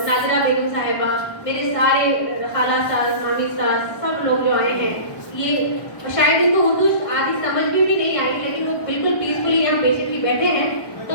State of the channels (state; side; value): late; right; 1.1 ms